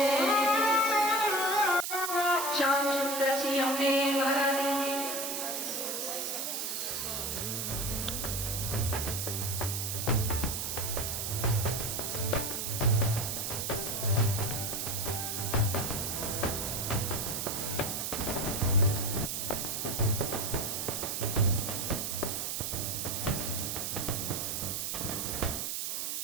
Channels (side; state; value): right; noise; hiss, 2 dB below the sound